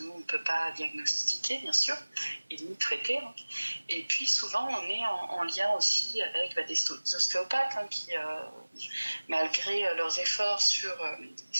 nous, on ne peut pas diagnostiquer, bien sûr, et ni traiter. Et puis, souvent, on est en lien aussi avec des ostéopathes qui, malgré leurs efforts sur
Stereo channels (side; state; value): both; inverted; correlation -1.00